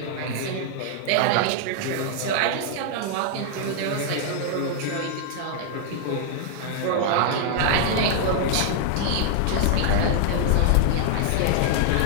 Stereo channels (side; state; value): both; different; correlation -0.01